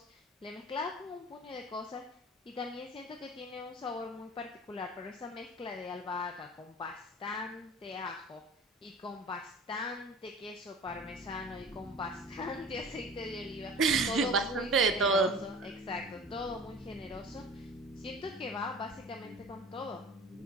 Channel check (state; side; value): normal; both; correlation 0.40